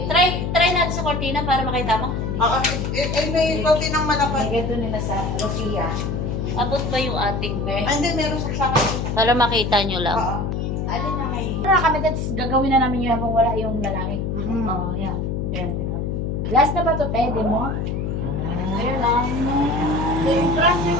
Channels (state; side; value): noise; left; hum, 1 dB below the sound